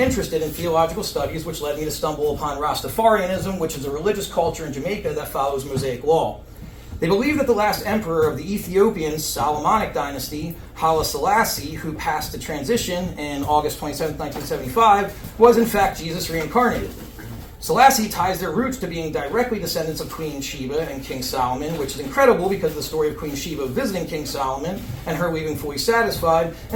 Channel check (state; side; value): identical; both; correlation 1.00